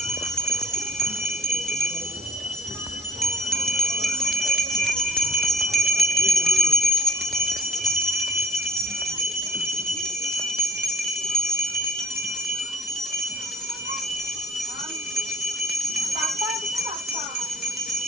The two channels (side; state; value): left; noise; hiss, 18 dB below the sound